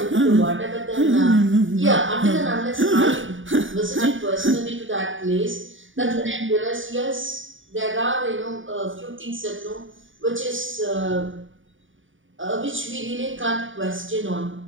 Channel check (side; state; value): left; late; 0.57 ms